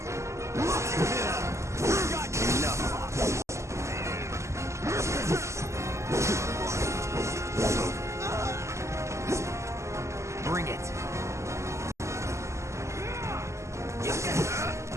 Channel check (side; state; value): left; late; 0.14 ms